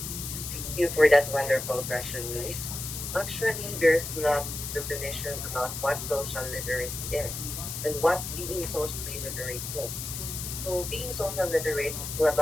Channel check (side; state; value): left; noise; hiss, 6 dB below the sound